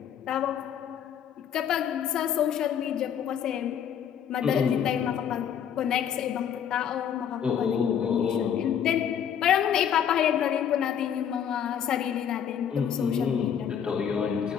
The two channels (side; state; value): right; quieter; 8.7 dB